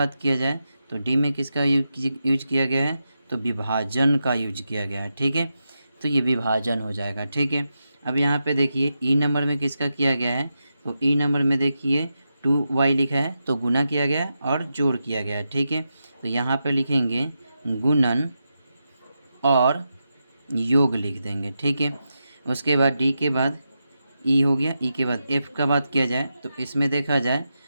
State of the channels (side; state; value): both; inverted; correlation -0.88